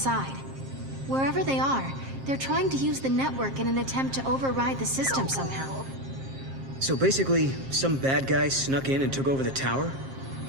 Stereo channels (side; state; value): left; late; 7.5 ms